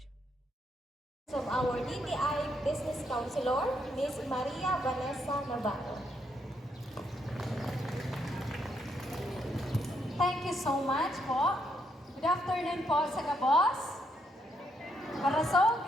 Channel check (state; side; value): normal; both; correlation 0.76